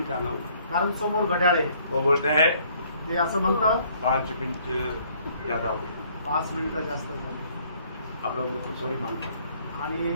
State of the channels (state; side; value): inverted; both; correlation -0.62